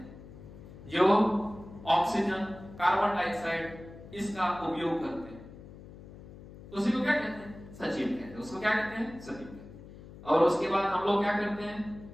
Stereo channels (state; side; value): noise; left; hum, 17 dB below the sound